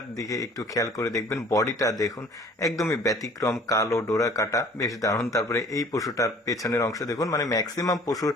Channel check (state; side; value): normal; both; correlation 0.51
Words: দিকে একটু খেয়াল করে দেখবেন, বডিটা দেখুন একদমই ব্যতিক্রম, কালো ডোরা কাটা, বেশ দারুণ। তারপরে এই পশুটার পেছনের অংশ দেখুন, মানে ম্যাক্সিমাম পশুর